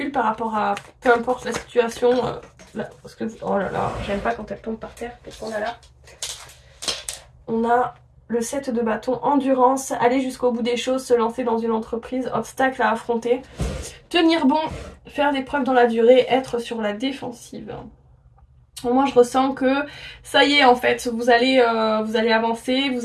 par rapport à peu importe la situation. Là, parce que, oh là là, j'aime pas quand elle tombe par terre. Qu'est-ce qu'on a là? On a le 7 de bâton, endurance, aller jusqu'au bout des choses, se lancer dans une entreprise, obstacle à affronter, tenir bon, faire des preuves dans la durée, être sur la défensive. Moi je ressens que ça y est en fait, vous allez avancer,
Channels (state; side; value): identical; both; correlation 1.00